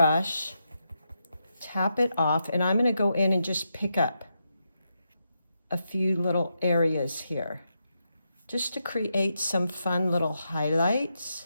tap it off, and I'm going to go in and just pick up a few little areas here, just to create some fun little highlights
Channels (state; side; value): inverted; both; correlation -0.84